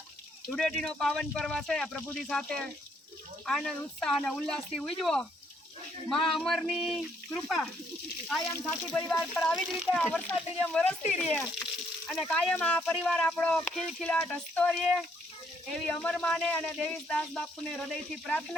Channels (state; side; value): normal; both; correlation 0.70